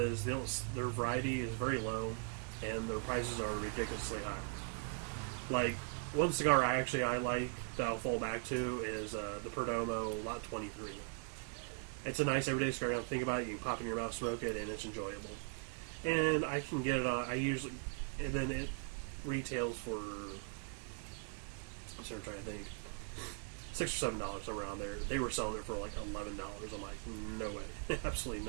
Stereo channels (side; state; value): left; quieter; 38.6 dB